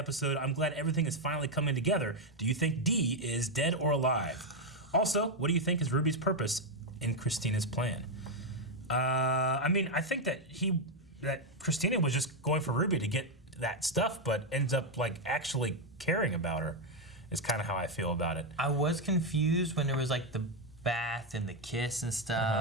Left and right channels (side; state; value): both; normal; correlation 0.03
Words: I'm glad everything is finally coming together. Do you think Dee is dead or alive? Also, what do you think is Ruby's purpose in Christina's plan? I mean, I think that Christina was just going for Ruby to get that stuff, but ends up like actually caring about her is kind of how I feel about it. I was confused when there was like the bath and the kiss and